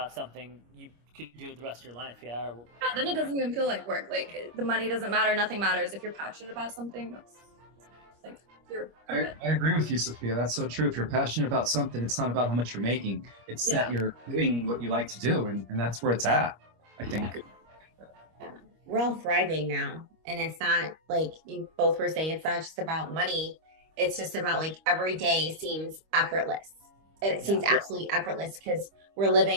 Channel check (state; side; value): late; left; 25 ms